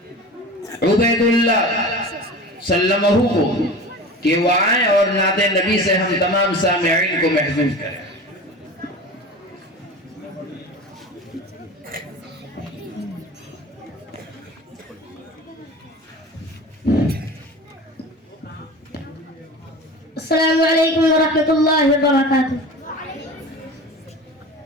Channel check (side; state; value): both; normal; correlation 0.34